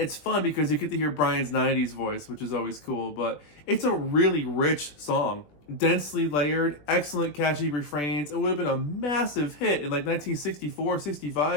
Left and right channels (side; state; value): right; late; 20 ms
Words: fun because you get to hear Brian's 90s voice, which is always cool, but it's a really rich song. Densely layered, excellent catchy refrains. It would have been a massive hit in like 1964,